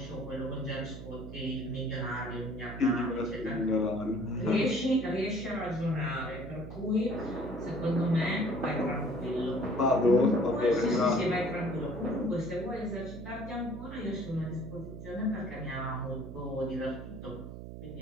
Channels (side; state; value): right; noise; hum, 10 dB below the sound